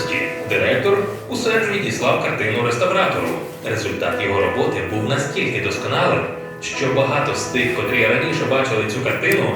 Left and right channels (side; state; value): both; identical; correlation 1.00